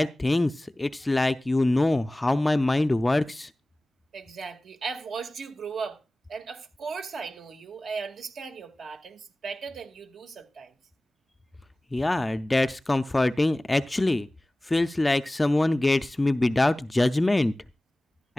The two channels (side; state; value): both; normal; correlation 0.98